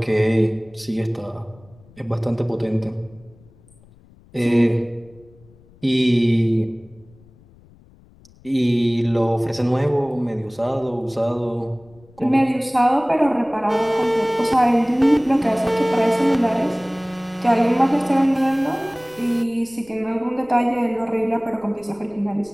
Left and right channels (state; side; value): noise; left; rumble, 27 dB below the sound